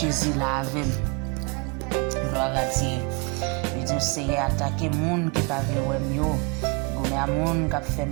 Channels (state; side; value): quieter; left; 29.6 dB